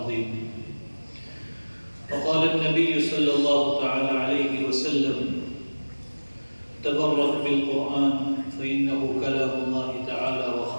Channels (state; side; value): inverted; both; correlation -1.00